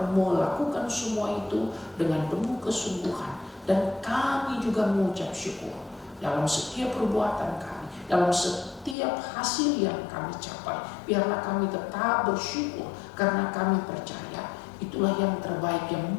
melakukan semua itu dengan penuh kesungguhan, dan kami juga mengucap syukur dalam setiap perbuatan kami, dalam setiap hasil yang kami capai. Biarlah kami tetap bersyukur, karena kami percaya itulah yang terbaik yang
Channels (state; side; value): drops out; right; at 9.0 s